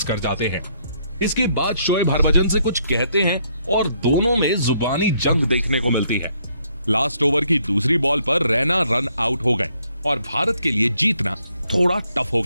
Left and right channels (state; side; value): inverted; both; correlation -0.70